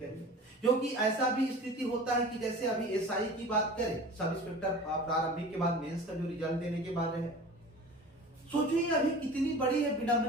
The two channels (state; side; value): normal; both; correlation 0.39